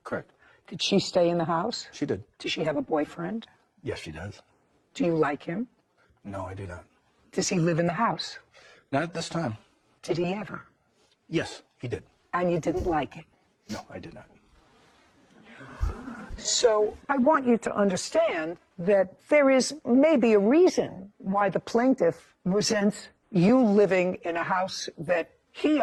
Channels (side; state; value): both; identical; correlation 1.00